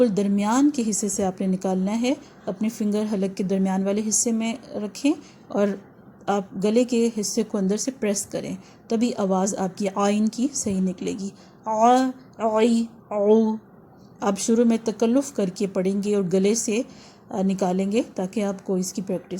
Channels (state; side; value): identical; both; correlation 1.00